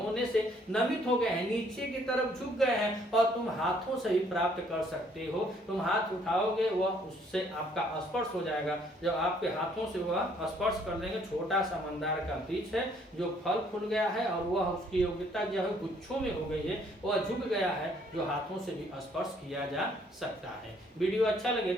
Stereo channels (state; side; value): normal; both; correlation 0.64